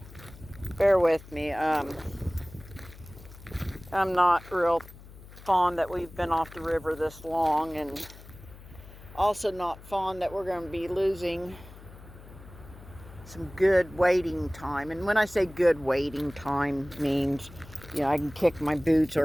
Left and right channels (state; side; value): noise; left; hum, 18 dB below the sound